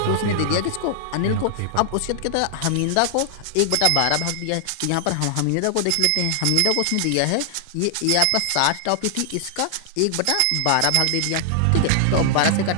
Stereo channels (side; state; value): both; different; correlation 0.00